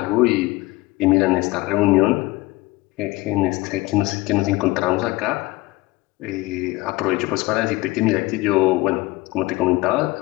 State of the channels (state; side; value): quieter; right; 20.6 dB